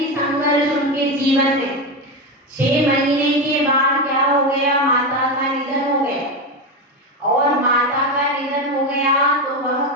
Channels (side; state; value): both; normal; correlation 0.14